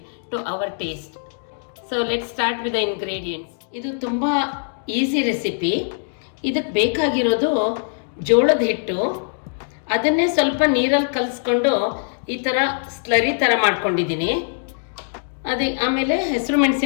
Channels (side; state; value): right; silent; digital silence